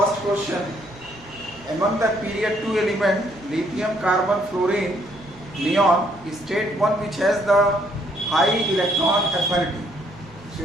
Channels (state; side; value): noise; right; hum, 23 dB below the sound